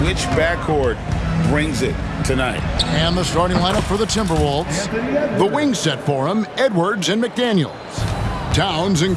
which backcourt brings it tonight. And the starting lineup for the Timberwolves. The wing set for him, Edwards and McDaniels. Towns and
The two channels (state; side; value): identical; both; correlation 1.00